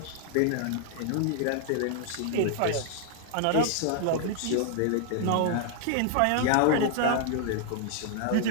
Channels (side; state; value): both; different; correlation 0.00